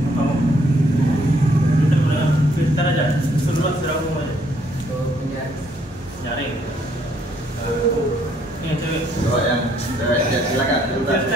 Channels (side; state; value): both; normal; correlation 0.67